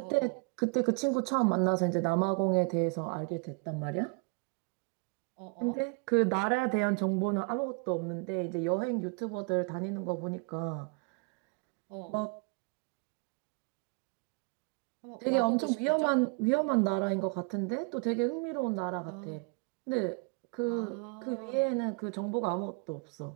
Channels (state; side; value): quieter; left; 33.2 dB